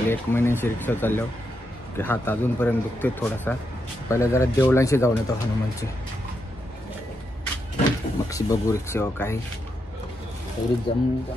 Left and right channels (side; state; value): both; normal; correlation 0.83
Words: 1 महिन्याची रिक्षा चाललो की हात अजूनपर्यंत दुखते थोडासा. पहिला जरा देवळांशी जाऊन येतो हनुमानची. मग बघू रिक्षावर काही तेवढी